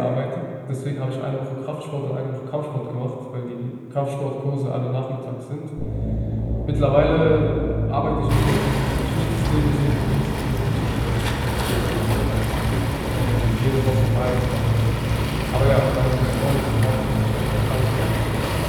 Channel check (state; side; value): identical; both; correlation 1.00